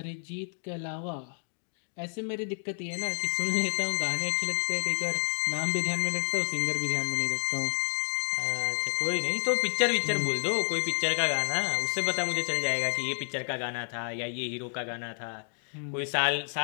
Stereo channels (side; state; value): right; silent; digital silence